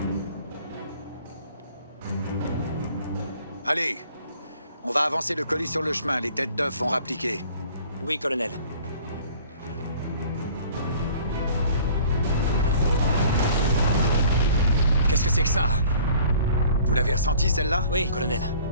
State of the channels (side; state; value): both; inverted; correlation -0.52